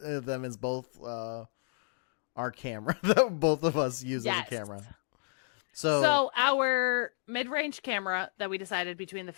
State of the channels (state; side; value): silent; right; digital silence